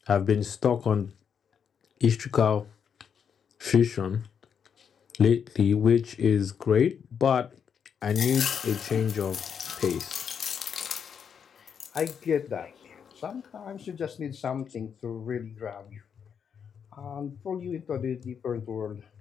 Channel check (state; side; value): quieter; right; 7.3 dB